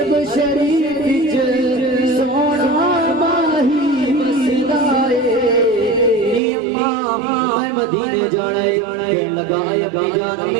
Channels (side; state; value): left; drops out; at 6.4 s